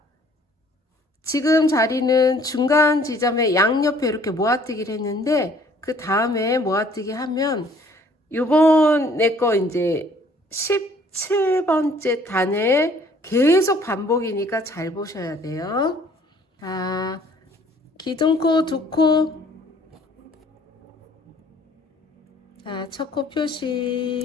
지금 자리는 중간 지점에 양옆에 이렇게 모아뜨기를 했는데, 그 다음에 모아뜨기 하면, 요번에 거 이제 17번째 단에 계속 반복이니까 잘 보셔야 돼요. 자, 기둥코, 두코. 자, 첫 코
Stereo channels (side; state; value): both; normal; correlation 0.57